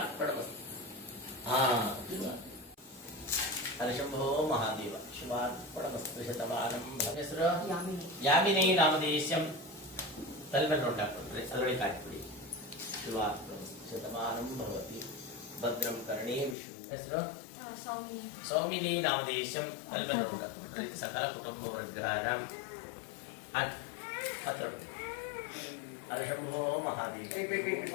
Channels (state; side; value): drops out; right; at 16.6 s